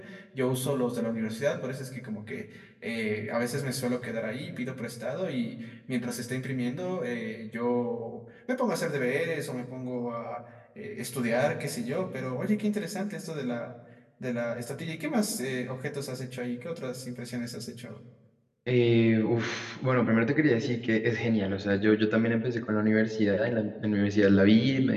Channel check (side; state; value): both; identical; correlation 1.00